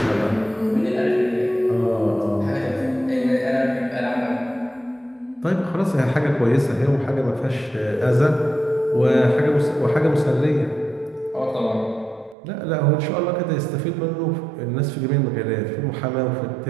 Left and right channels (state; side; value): drops out; left; at 12.4 s